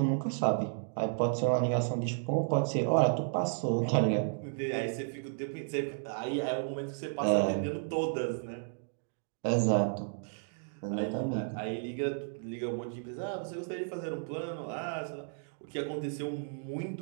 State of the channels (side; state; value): left; silent; digital silence